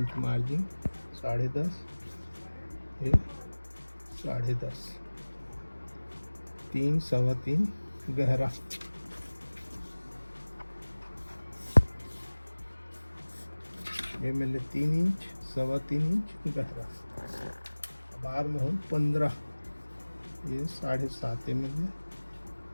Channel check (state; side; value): inverted; both; correlation -1.00